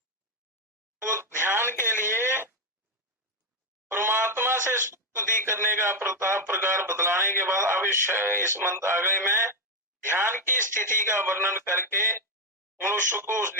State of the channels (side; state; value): both; normal; correlation 0.06